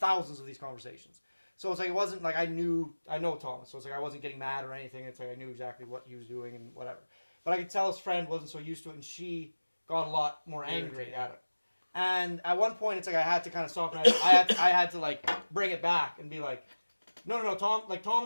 of these conversations. So it's like, it wasn't like I know Thomas. So it's like I wasn't getting mad or anything. It's like I knew exactly what he was doing and whatever. But I could tell his friend wasn't so used to it, and she got a lot more angry at him. And at one point, it's like I had to kind of stop, and I had to like bring it back and be like, no,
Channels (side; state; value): both; inverted; correlation -1.00